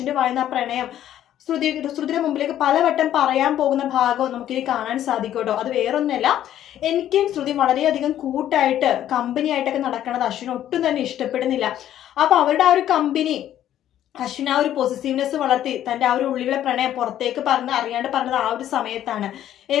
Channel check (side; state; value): right; quieter; 11.6 dB